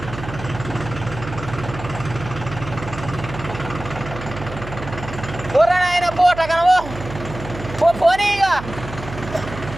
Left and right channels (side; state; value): right; noise; hum, 11 dB below the sound